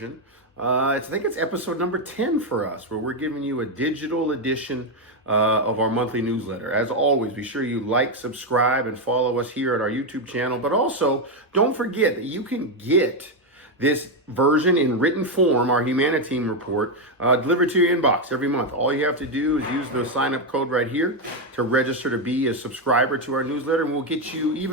I think it's episode number 10 for us, where we're giving you a digital edition of our monthly newsletter. As always, be sure you like, subscribe, and follow us here at our YouTube channel. But also, don't forget that you can get this version in written form, our HuMANiTEAM report, delivered to your inbox every month. All you have to do is use the sign-up code right here to register to be a subscriber to our newsletter, and we'll get you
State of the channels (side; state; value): both; normal; correlation 0.05